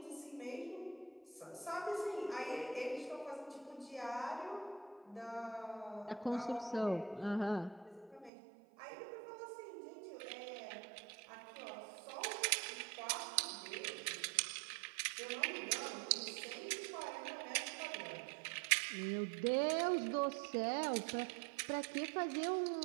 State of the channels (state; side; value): drops out; left; at 8.3 s